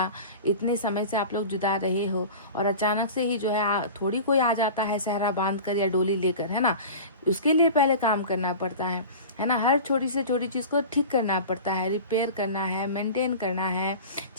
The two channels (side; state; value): both; inverted; correlation -0.35